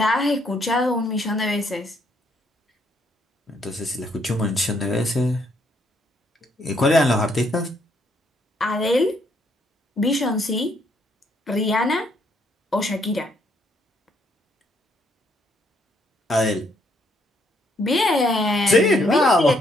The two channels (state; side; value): normal; both; correlation 0.71